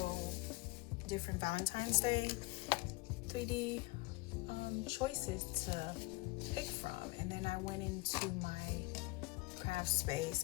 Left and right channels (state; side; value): quieter; right; 24.1 dB